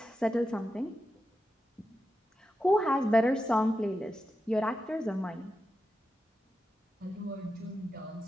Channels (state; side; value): normal; both; correlation 0.89